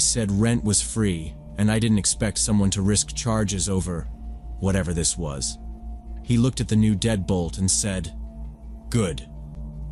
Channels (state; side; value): identical; both; correlation 1.00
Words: rent was free, and I didn't expect someone to risk charges over whatever this was. He looked at the new deadbolt and said, "Good.